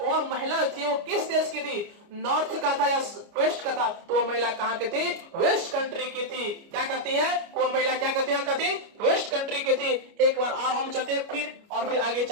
महिला थी, वो किस देश की थी, नॉर्थ का था या वेस्ट का था, तो वह महिला कहां की थी, वेस्ट कंट्री की थी। क्या कहती है, वो महिला क्या कहती है, वेस्ट कंट्री की थी। एक बार और हम चलते फिर, और फिर आगे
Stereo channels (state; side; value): late; left; 29 ms